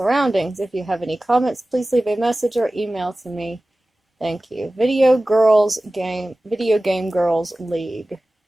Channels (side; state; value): both; normal; correlation 0.97